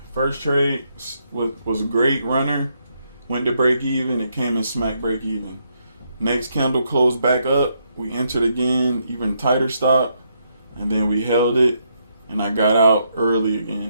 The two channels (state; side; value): inverted; both; correlation -0.77